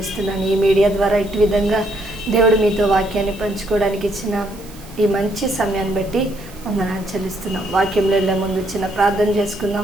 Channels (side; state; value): right; noise; hiss, 21 dB below the sound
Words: ఈ మీడియా ద్వారా ఇటు విధంగా దేవుడు మీతో వాక్యాన్ని పంచుకోవడానికి ఇచ్చిన ఈ మంచి సమయాన్ని బట్టి వందనాలు చెల్లిస్తున్నాం. వాక్యంలో వెళ్ళే ముందు చిన్న ప్రార్థన